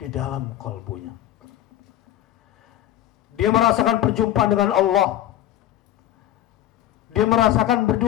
dalam kalbunya. Dia merasakan perjumpaan dengan Allah. Dia merasakan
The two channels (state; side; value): quieter; right; 12.8 dB